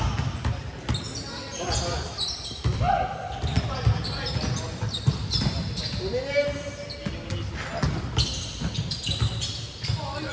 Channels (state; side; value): identical; both; correlation 1.00